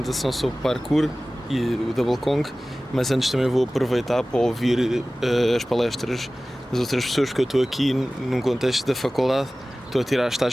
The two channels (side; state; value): both; normal; correlation 0.97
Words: sobre parkour e o Double Kong, mas antes também vou aproveitar para ouvir as palestras das outras pessoas, porque eu estou aqui num contexto da faculdade, estou